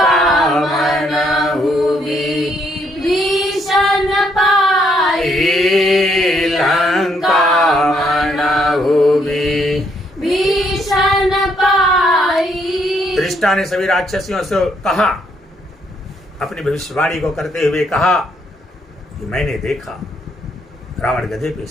मनहु भीषण पाई, लंका मनहु भीषण पाई। दृष्टा ने सभी राक्षसियों से कहा, अपनी भविष्यवाणी को करते हुए कहा कि मैंने देखा रावण गधे पे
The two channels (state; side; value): normal; both; correlation 0.72